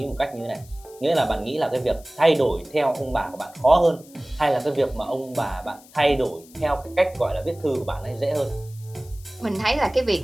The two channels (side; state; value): left; noise; hiss, 24 dB below the sound